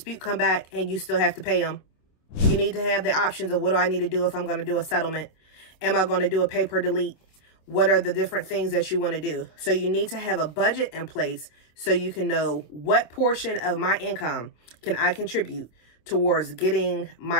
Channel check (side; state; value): right; late; 27 ms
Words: come back and you still have to pay them, you need to have the options of what do I need to do if I'm going to do a settlement? Am I going to do a pay per delete? What are the different things that you want to do? So you need to have a budget in place so you can know what portion of my income can I contribute towards getting